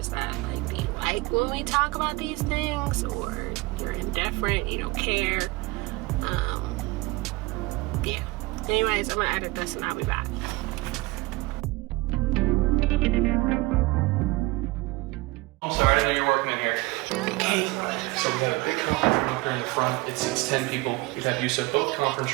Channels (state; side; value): quieter; left; 22.6 dB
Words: that. Like, do you like when we talk about these things, or you're indifferent, you don't care? Yeah. Anyways, I'm gonna edit this and I'll be back. I'm sorry, I didn't know you were working in here. Okay. So we got a big conference room up here in the front. It seats 10 people. We've had use of both